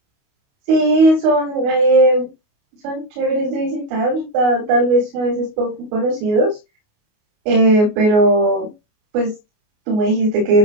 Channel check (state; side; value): late; left; 28 ms